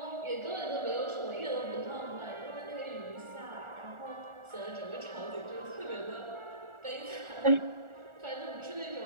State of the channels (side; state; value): left; late; 1.4 ms